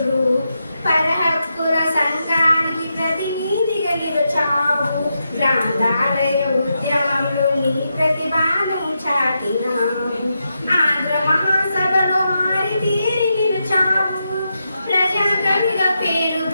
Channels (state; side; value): inverted; both; correlation -0.85